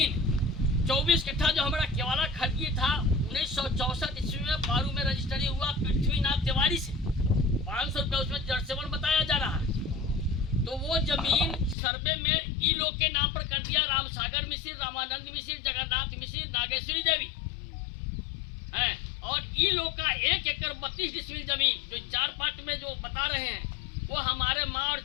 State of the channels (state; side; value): drops out; right; at 11.8 s